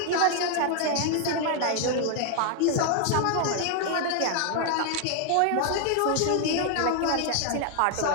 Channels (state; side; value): different; both; correlation 0.00